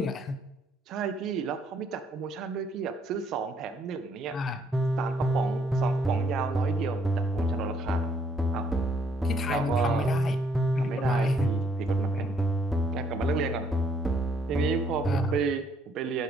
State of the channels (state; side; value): normal; both; correlation 0.67